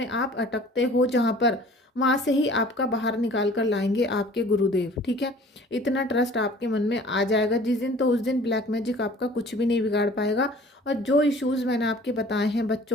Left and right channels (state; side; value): normal; both; correlation 0.48